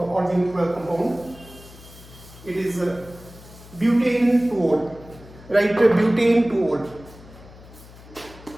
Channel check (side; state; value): left; noise; hum, 20 dB below the sound